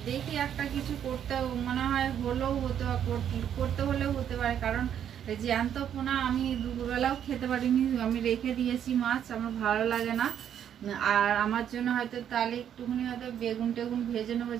দেখি একটা কিছু করতে মনে হয় করতে হলেও হতে পারে, কারণ জ্যান্ত পোনা আমি দুপুরবেলাও খেতে পারিনি। আমি রেখে দিয়েছি মাছ, আমার ভালো লাগে না। আর আমার জন্য হয়তো তাহলে একটুখানি হয়তো বেগুন টেগুন ভেজে নেবো,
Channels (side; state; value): left; quieter; 9.4 dB